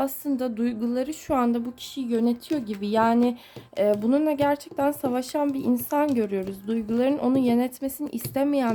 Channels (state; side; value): identical; both; correlation 1.00